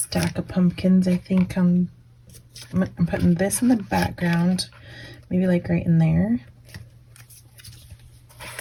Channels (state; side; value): identical; both; correlation 1.00